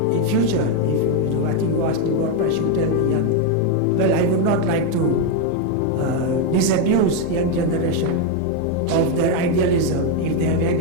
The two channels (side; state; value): both; different; correlation 0.02